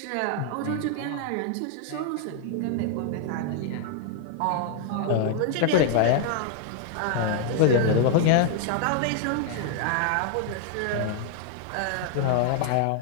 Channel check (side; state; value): both; different; correlation 0.00